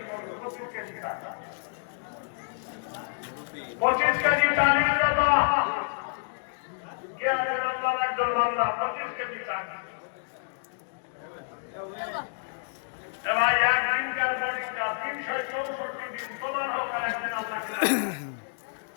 25 কেজি চাল 25 কেজি চালের কথা একজন বাংলা 25 কেজি চাল এবার একদিনকার বোর্ডিংটা 364 দিন তোমার হোক আর একদিন আল্লাহ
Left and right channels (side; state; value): right; silent; digital silence